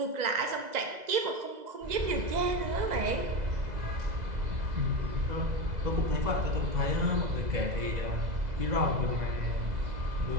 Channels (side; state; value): left; late; 2.0 ms